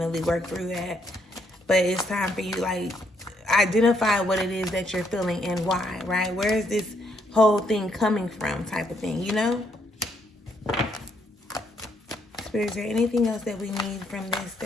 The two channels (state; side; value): normal; both; correlation 0.73